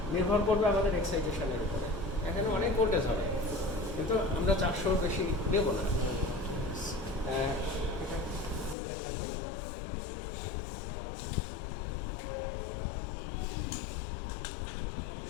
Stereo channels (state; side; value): drops out; right; at 8.8 s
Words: নির্ভর করবে আমাদের এক্সাইটেশনের উপরে। এখানে অনেক ভোল্টেজ হবে কিন্তু আমরা 400 বেশি দেব না।